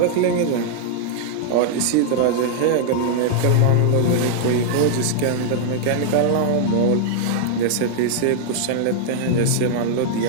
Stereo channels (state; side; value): different; both; correlation -0.01